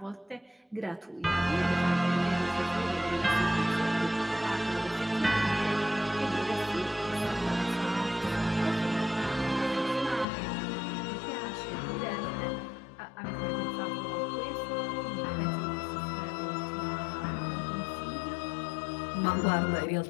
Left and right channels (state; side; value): drops out; right; at 10.2 s